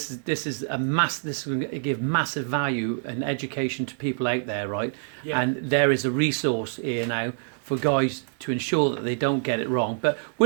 is going to give massive value and education to people out there, right? Yeah. And there is a resource here now for guys to ensure that they don't get it wrong. But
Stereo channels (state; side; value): silent; left; digital silence